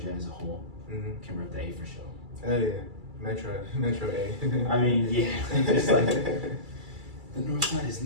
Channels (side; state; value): left; late; 2.3 ms